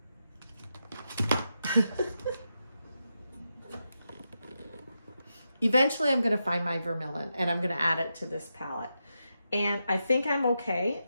eventually I'm gonna find my vermilion and I'm gonna add it to this palette. And I think I'm okay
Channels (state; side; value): inverted; both; correlation -0.87